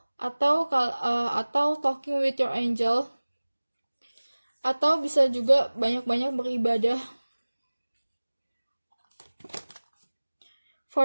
atau talking with your angel, atau bisa juga banyak-banyak beribadah.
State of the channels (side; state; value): both; inverted; correlation -1.00